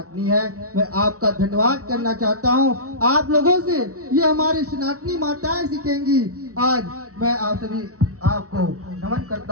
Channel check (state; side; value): late; left; 0.65 ms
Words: है। मैं आपका धन्यवाद करना चाहता हूं आप लोगों से, ये हमारी सनातनी माताएं सीखेंगी। आज मैं आप सभी आपको नमन